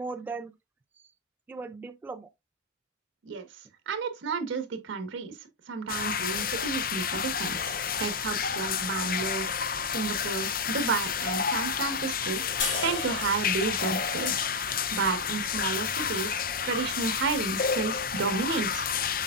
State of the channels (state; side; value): normal; both; correlation 0.01